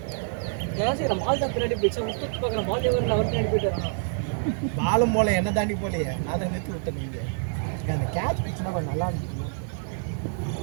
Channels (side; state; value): left; silent; 60 dB below the other